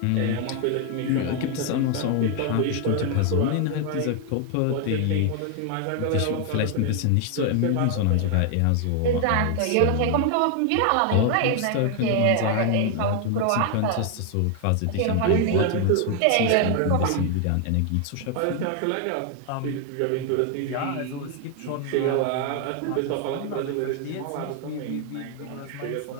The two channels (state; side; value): different; both; correlation 0.00